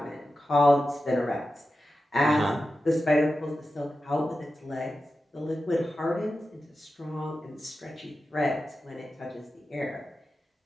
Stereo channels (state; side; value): normal; both; correlation 0.92